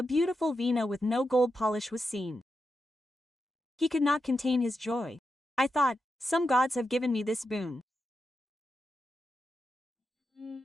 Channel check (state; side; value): normal; both; correlation 0.87